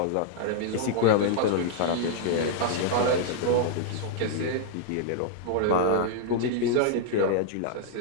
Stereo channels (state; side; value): different; both; correlation -0.01